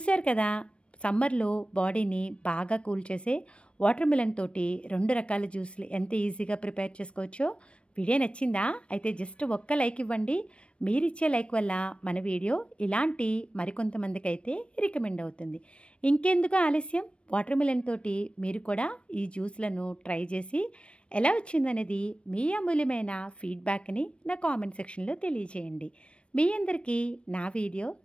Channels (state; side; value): late; right; 0.059 ms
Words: కదా, సమ్మర్లో బాడీని బాగా కూల్ చేసే వాటర్ మిలన్ తోటి 2 రకాల జ్యూస్లు ఎంత ఈజీగా ప్రిపేర్ చేసుకోవచ్చో. వీడియో నచ్చిందా? అయితే జస్ట్ 1 లైక్ ఇవ్వండి. మీరిచ్చే లైక్ వల్ల మన వీడియో ఇలాంటి మరికొంతమందికి అయితే రికమెండ్ అవుతుంది. ఇంకెందుకు ఆలస్యం, వాటర్ మిలన్ తోటి మీరు కూడా ఈ జ్యూస్లను ట్రై చేసి ఎలా వచ్చిందనేది మీ అమూల్యమైన ఫీడ్బ్యాక్ని నా కామెంట్ సెక్షన్లో తెలియజేయండి. మీ అందరికీ నా వీడియో